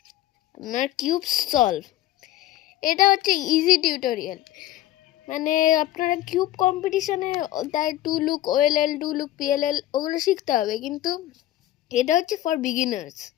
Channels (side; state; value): right; quieter; 14.4 dB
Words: আপনার কিউব সলভ। এটা হচ্ছে ইজি টিউটোরিয়াল, মানে আপনারা কিউব কম্পিটিশনে তাই two look OLL, two look PLL ওগুলো শিখতে হবে, কিন্তু এটা হচ্ছে for beginners.